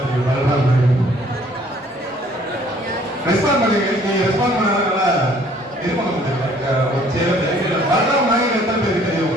தெரியும் பல்ராம் மயில்? ரெஸ்பாண்ட் பண்ணுங்க. நீங்க ரெஸ்பாண்ட் பண்ணாதனால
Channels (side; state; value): both; normal; correlation 0.58